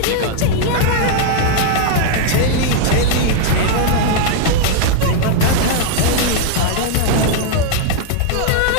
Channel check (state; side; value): different; both; correlation 0.00